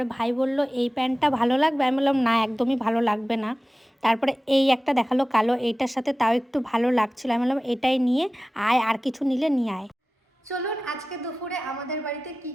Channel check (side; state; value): both; normal; correlation 0.96